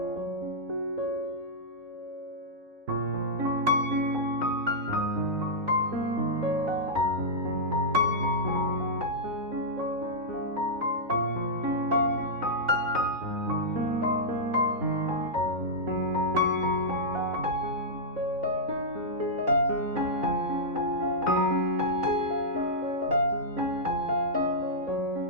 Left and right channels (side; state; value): left; late; 4.0 ms